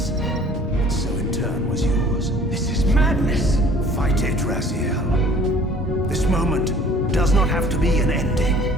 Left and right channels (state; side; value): normal; both; correlation 0.51